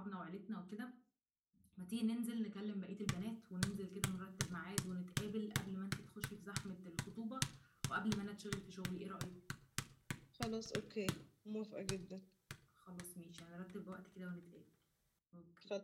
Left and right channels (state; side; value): identical; both; correlation 1.00